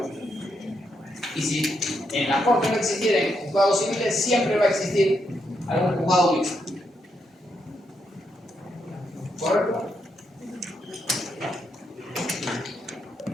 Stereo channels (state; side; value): normal; both; correlation 0.80